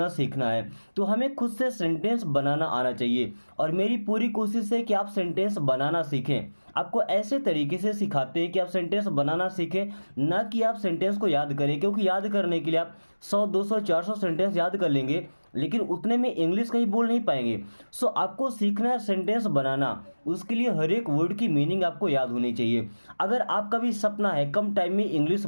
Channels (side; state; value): both; inverted; correlation -1.00